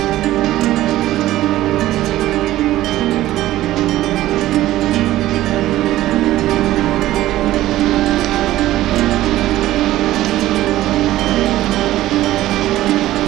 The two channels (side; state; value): left; quieter; 15.0 dB